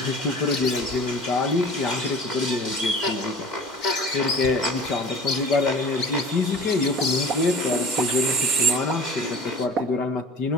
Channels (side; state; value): both; normal; correlation 0.43